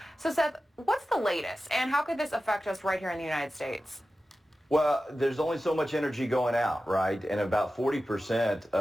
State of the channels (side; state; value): both; normal; correlation 0.94